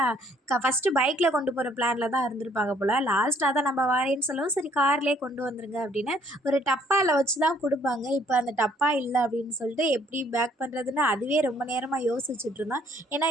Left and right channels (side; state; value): both; normal; correlation 0.63